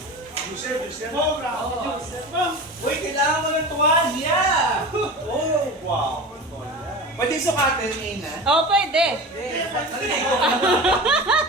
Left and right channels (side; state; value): both; normal; correlation 0.31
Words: Uy, kailangan mo ng tuwalya. Oh, wow. Pwede sukatin, Nina. Oh, pwede.